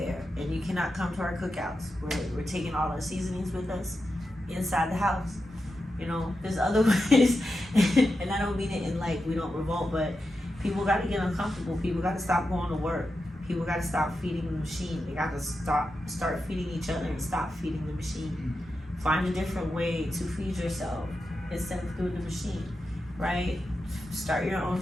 and you cannot come to our cookouts. We're taking all our seasonings with us inside the house. You know, there's other ways, and I don't mean it in like we don't revolt, but people got to get uncomfortable. People got to stop going to work. People got to stop feeding the machine. They got to start feeding each other and stop feeding the machine. Find a different way to feed yourself instead of through the machine, right? Start your own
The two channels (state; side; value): normal; both; correlation 0.89